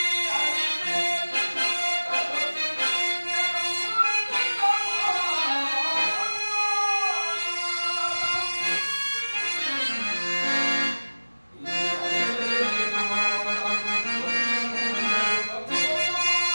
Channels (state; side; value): inverted; both; correlation -1.00